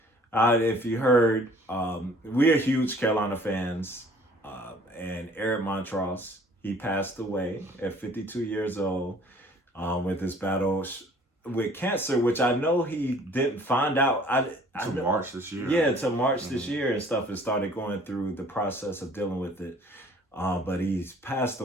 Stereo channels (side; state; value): both; normal; correlation 0.54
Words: If you heard, we are huge Carolina fans, and Eric Montross, he passed away at 52 years old with his battle with cancer, which I know he didn't find out. March this year. Yeah, to March this year and stuff, and started going through the process of dealing with it. But he's passed